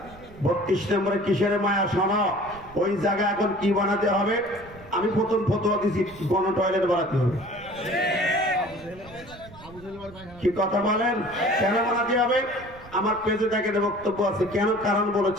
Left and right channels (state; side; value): noise; right; rumble, 20 dB below the sound